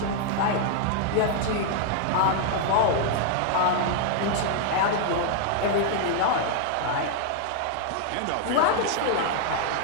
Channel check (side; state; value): both; different; correlation 0.00